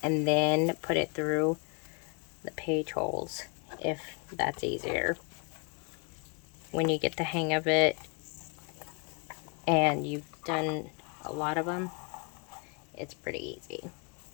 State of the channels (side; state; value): right; quieter; 34.9 dB